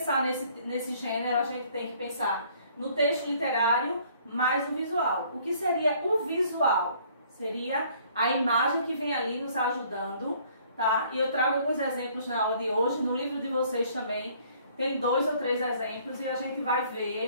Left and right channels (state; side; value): inverted; both; correlation -0.59